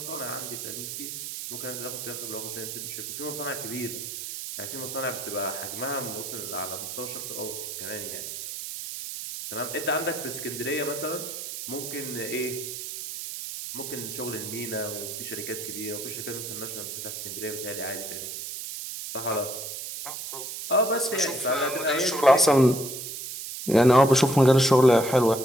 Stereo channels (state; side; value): noise; right; hiss, 7 dB below the sound